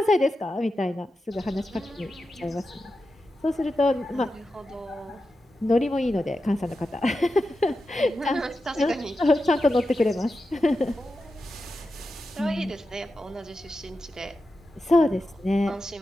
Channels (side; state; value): both; normal; correlation 0.90